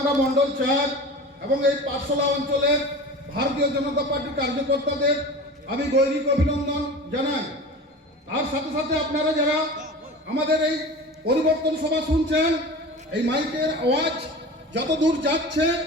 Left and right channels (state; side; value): normal; both; correlation 0.34